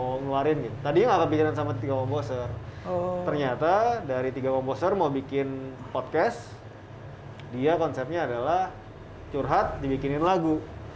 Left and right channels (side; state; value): both; identical; correlation 1.00